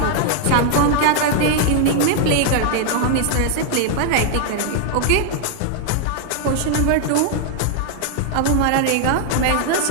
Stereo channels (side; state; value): both; different; correlation 0.00